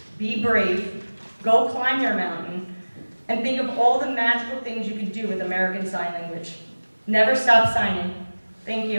be brave, go climb your mountain, and think of all the magical things you can do with American Sign Language. Never stop signing. Thank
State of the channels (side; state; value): both; inverted; correlation -1.00